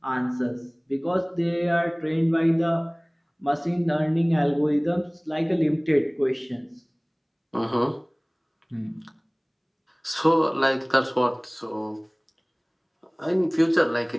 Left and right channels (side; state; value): both; identical; correlation 1.00